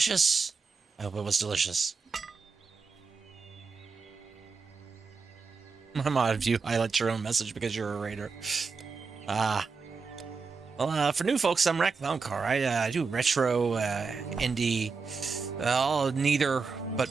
I hope it was delicious. I'm odd of you highlight your own message because you're a raider. Well, for new folks, I'm Rack Louncar. I do retro, indie, neither, but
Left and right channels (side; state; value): left; quieter; 4.9 dB